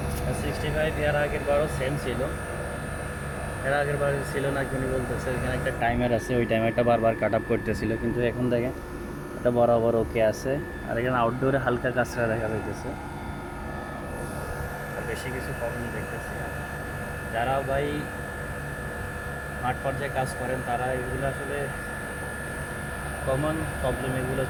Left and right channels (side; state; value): both; identical; correlation 1.00